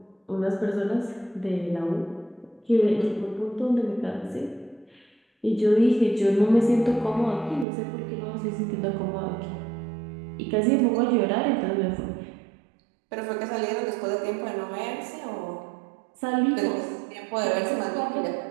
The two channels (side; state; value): left; drops out; at 7.7 s